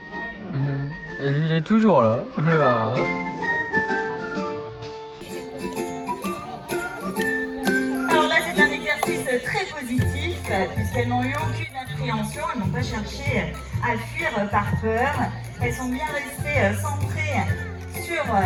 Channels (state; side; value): identical; both; correlation 1.00